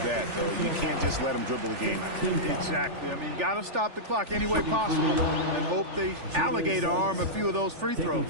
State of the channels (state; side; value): late; left; 3.4 ms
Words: that, though. You can't just let them dribble the game out. Exactly. I mean, you got to stop the clock any way possible and hope they alligator arm a few of those free throws.